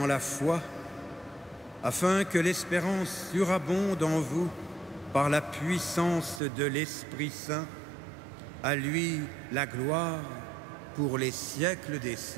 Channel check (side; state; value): left; drops out; at 6.4 s